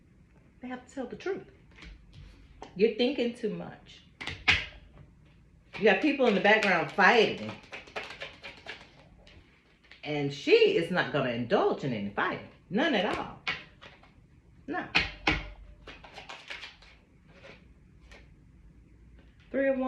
They have to tell the truth. You're thinking too much. You got people in the background fighting. And she is not going to indulge in any fighting. None at all. No. Three of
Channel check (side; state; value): both; identical; correlation 1.00